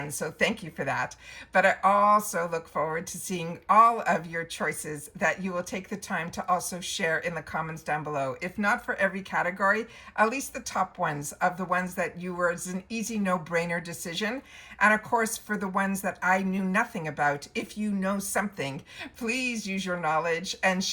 so thank you for that. But I also look forward to seeing all of your choices that you will take the time to also share in the comments down below. If not for every category, at least the top ones of the ones that you were as an easy no-brainer decision. And of course, for the ones that I knew nothing about, if you know something, please use your knowledge and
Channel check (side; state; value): both; identical; correlation 1.00